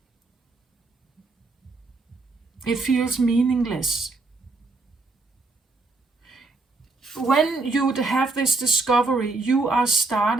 It feels meaningless. When you have this discovery, you are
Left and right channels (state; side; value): quieter; left; 3.5 dB